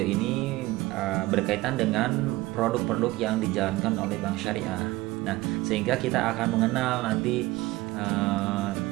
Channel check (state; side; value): quieter; left; 19.3 dB